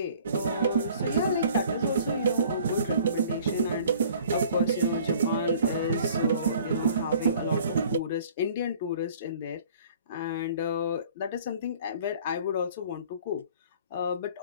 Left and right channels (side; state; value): both; inverted; correlation -0.52